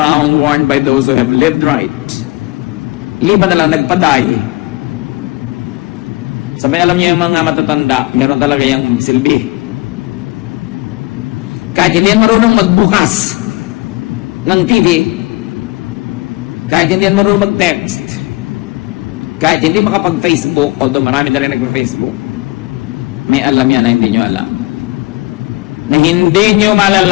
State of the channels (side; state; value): right; quieter; 23.0 dB